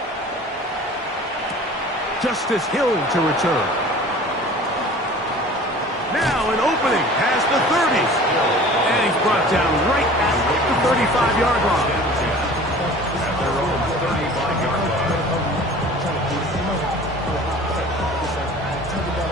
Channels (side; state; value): both; normal; correlation 0.44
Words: Justice Hill to return. Now an opening past the 30s. And he's brought down right at the 35-yard line. At their own 35-yard line.